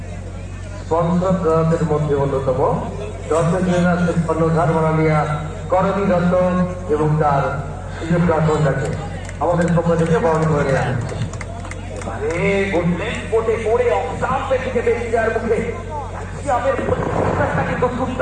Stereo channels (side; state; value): both; identical; correlation 1.00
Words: স্পন্সরদের মধ্যে অন্যতম কর্ণধার মাননীয়া করণী দত্ত এবং তার সুযোগ কন্যাকে আমাদের পক্ষ থেকে বরণ করে নেওয়া হচ্ছে। এবারে ঘুরলেন কোটে পড়ে অফসাম্পের দিকে বেশি যাওয়ার মুখে ক্যালসিয়ামের প্রতিষ্ঠানটা কিন্তু